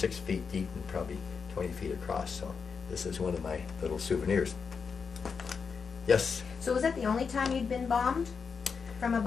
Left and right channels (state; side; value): quieter; right; 5.7 dB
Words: feet deep and probably 20 feet across. So this is one of my little souvenirs. Yes. So was that the only time you'd been bombed from